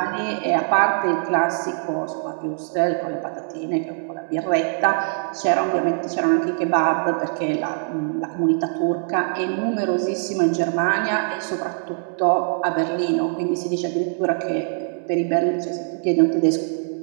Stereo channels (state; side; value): silent; left; digital silence